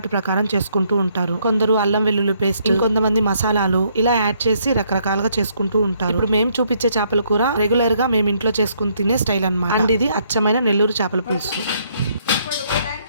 ప్రకారం చేసుకుంటూ ఉంటారు. కొందరు అల్లం వెల్లుల్లి పేస్ట్, ఇంకొంతమంది మసాలాలు ఇలా యాడ్ చేసి రకరకాలుగా చేసుకుంటూ ఉంటారు. ఇప్పుడు మేము చూపించే చేపల కూర రెగ్యులర్ గా మేము ఇంట్లో చేసుకుని తినే స్టైల్ అన్నమాట. అండ్ ఇది అచ్చమైన నెల్లూరు చేపల పులుసు.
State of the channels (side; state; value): both; inverted; correlation -0.70